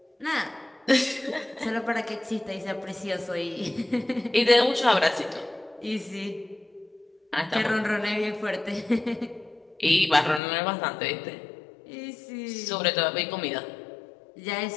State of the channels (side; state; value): right; drops out; at 10.4 s